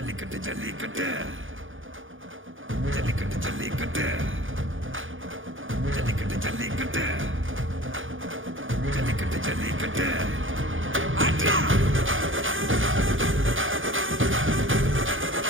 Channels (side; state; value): left; late; 0.58 ms